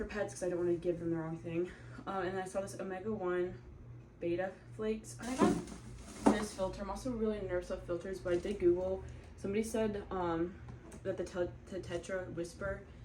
pets because I don't want to give them the wrong thing. And then I saw this Omega-1 beta flakes. I got this filter. I'm also really nervous about filters, but I did Google. Somebody said that the Tetra Whisper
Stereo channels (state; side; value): identical; both; correlation 1.00